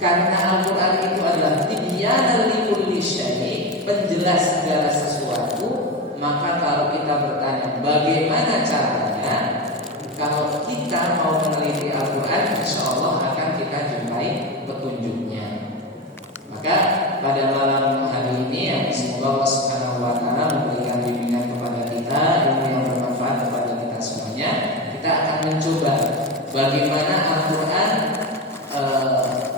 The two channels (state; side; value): normal; both; correlation 0.19